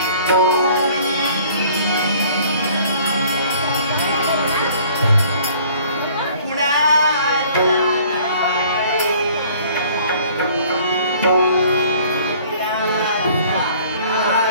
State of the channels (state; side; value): inverted; both; correlation -0.54